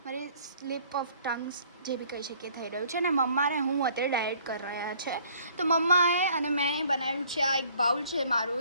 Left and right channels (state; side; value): inverted; both; correlation -0.58